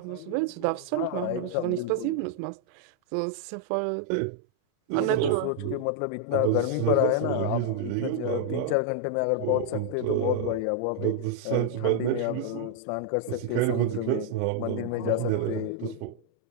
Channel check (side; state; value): both; different; correlation -0.01